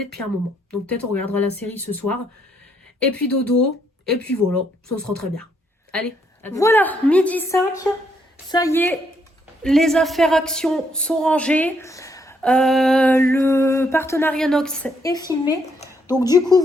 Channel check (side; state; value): both; normal; correlation 0.73